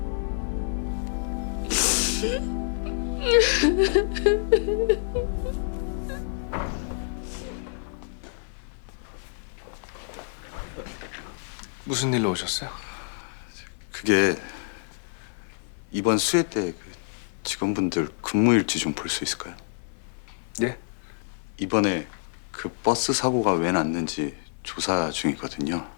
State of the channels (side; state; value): right; silent; digital silence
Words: 무슨 일로 오셨어요? 그게 이번 수해 때 그 직원분들 근무일지 좀 볼 수 있을까요? 예? 이번에 그 버스 사고가 왜 났는지 조사 중이거든요.